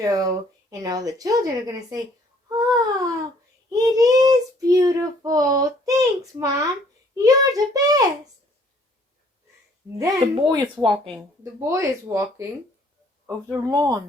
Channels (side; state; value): both; normal; correlation 0.60